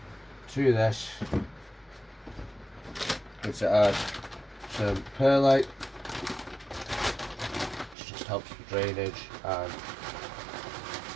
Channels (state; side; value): drops out; left; at 8.0 s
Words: to this I'm going to add some perlite, which just helps with drainage and